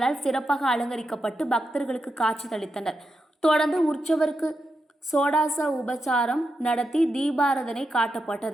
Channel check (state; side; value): normal; both; correlation 0.87